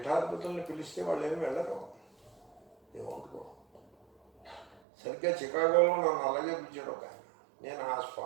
పిలిస్తే వాళ్ళు ఏమి వెళ్ళరు, ఏమనుకో. సరిగ్గా చికాగోలో నన్ను అలాగే పిలిచాడు ఒక ఆయన. నేను ఆ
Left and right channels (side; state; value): left; drops out; at 4.8 s